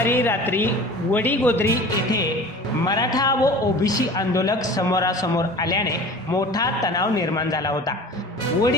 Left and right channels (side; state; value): both; normal; correlation 0.40